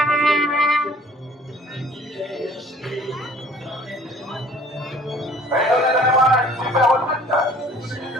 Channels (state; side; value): normal; both; correlation 0.52